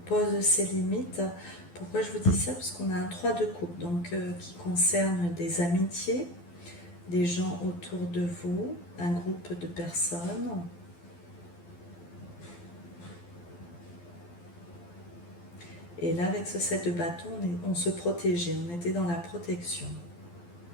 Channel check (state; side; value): late; right; 12 ms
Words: pose ses limites. Pourquoi je vous dis ça? Parce qu'on a un 3 de coupe, donc qui concerne des amitiés, des gens autour de vous, un groupe de personnes. Et là, avec ce 7 de bâton, on se protégeait, on était dans la protection.